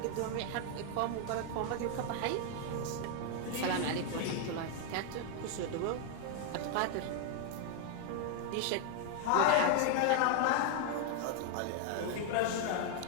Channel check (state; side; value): different; both; correlation 0.00